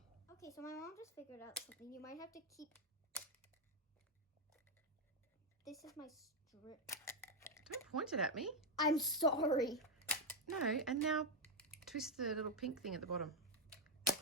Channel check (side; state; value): both; normal; correlation 0.03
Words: Okay, so my mom just figured out something. You might have to keep. This is my strip. Don't point it at me. I'm sorry. No, and now twist the little pink thing at the bottom.